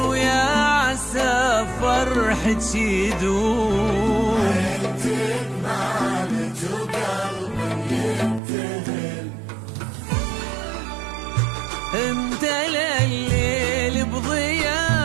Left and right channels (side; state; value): left; drops out; at 8.4 s